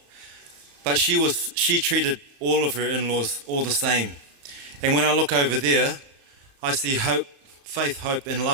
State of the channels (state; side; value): late; left; 37 ms